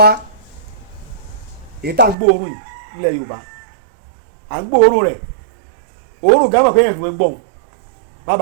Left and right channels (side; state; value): left; drops out; at 2.1 s